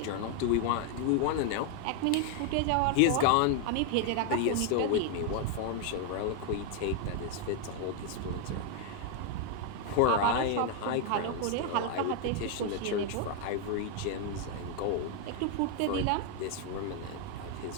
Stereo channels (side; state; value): both; different; correlation 0.01